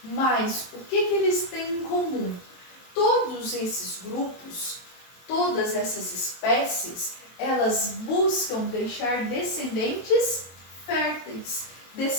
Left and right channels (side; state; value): right; late; 23 ms